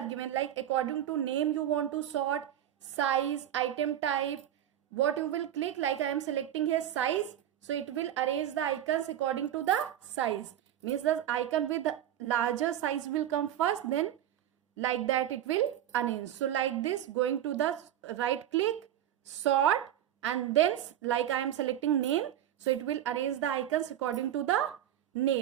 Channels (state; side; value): quieter; left; 11.3 dB